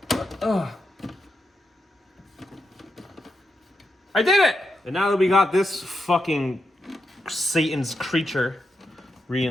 I did it! And now that we got this fucking Satan's creature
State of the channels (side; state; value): both; normal; correlation 0.85